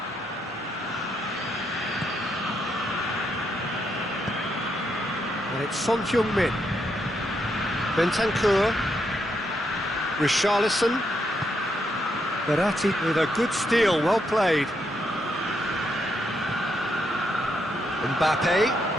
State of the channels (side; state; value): both; normal; correlation 0.79